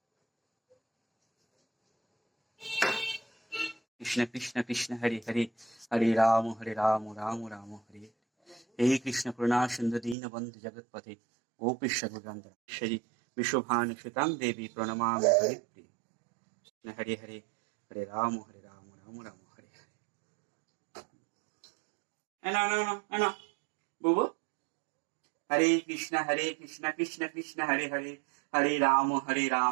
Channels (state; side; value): drops out; left; at 10.2 s